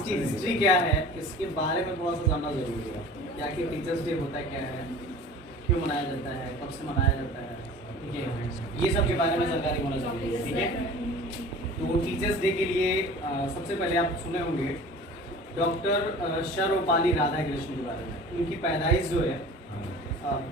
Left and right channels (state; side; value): normal; both; correlation 0.42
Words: हिस्ट्री क्या है इसके बारे में थोड़ा सा जानना जरूरी है। क्या कि टीचर्स डे होता क्या है, क्यों मनाया जाता है, कब से मनाया जाता है, ठीक है, ये सब के बारे में जानकारी होना जरूरी है। ठीक है, तो टीचर्स डे के लिए सबसे पहले आप सुने होंगे डॉक्टर सर्वपल्ली राधाकृष्णन के बारे में। उनकी पैदाइश जो है